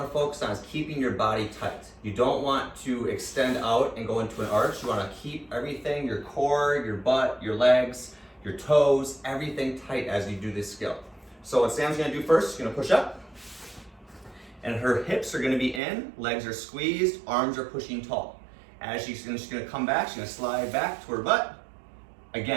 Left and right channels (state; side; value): drops out; left; at 15.8 s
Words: focus on is keeping your body tight. You don't want to extend out and go into an arch. You wanna keep everything, your core, your butt, your legs, your toes, everything tight as you do this skill. So what Sam's gonna do first, she's gonna push up, and her hips are gonna be in, legs are squeezed, arms are pushing tall. As she's gonna come back, she's gonna slide back to her butt.